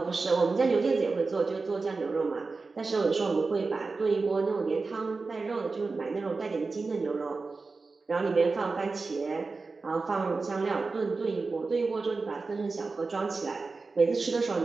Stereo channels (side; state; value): left; quieter; 4.0 dB